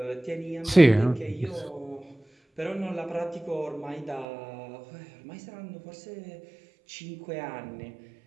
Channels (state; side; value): drops out; left; at 4.2 s